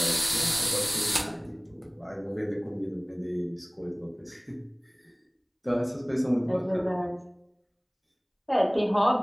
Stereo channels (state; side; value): identical; both; correlation 1.00